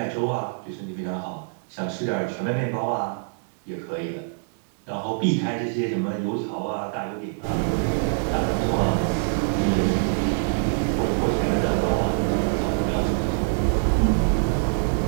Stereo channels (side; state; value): left; silent; digital silence